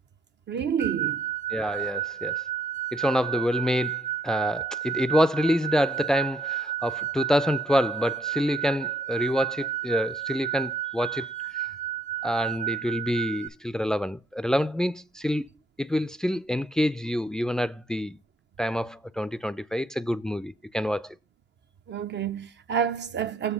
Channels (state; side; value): normal; both; correlation 0.69